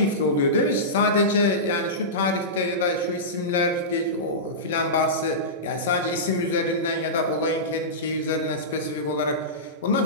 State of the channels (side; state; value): both; normal; correlation -0.17